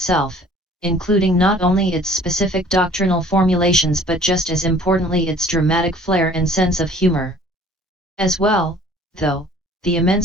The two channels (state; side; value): normal; both; correlation 0.52